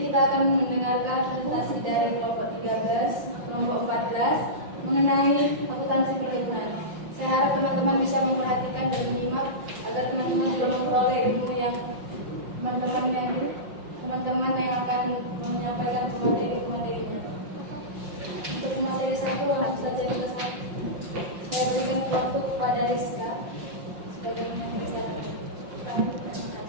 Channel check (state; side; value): late; left; 5.7 ms